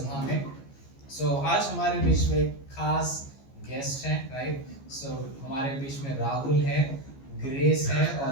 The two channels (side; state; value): right; late; 15 ms